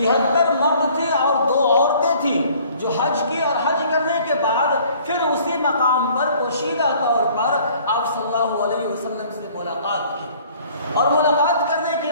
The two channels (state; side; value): inverted; both; correlation -0.55